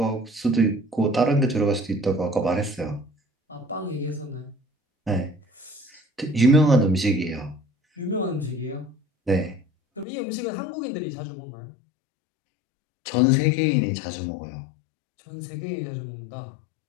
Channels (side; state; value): right; drops out; at 10.1 s